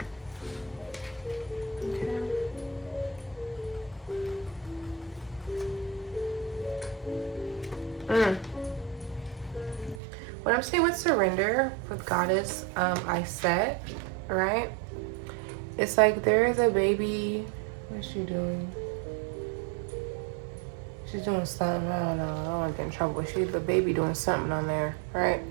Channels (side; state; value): left; drops out; at 10.0 s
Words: Okay. What I'm saying with surrender, with Goddess, I set, right? It's like there is a baby. What's she doing? She's doing something. I don't know. I don't want to get in trouble. But she's the baby doing something on there, right?